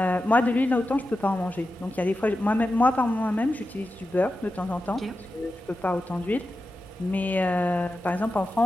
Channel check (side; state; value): both; normal; correlation 0.91